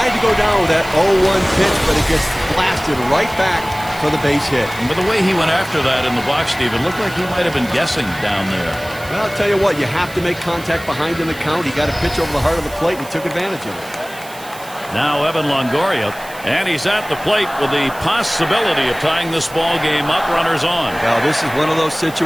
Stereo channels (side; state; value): right; noise; hiss, 18 dB below the sound